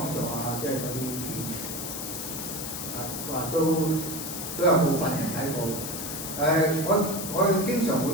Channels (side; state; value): left; noise; hiss, 6 dB below the sound